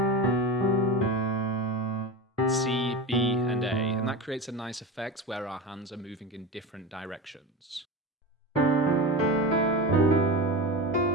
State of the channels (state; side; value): normal; both; correlation 0.25